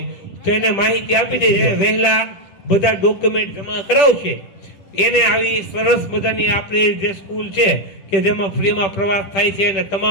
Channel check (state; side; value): late; right; 10 ms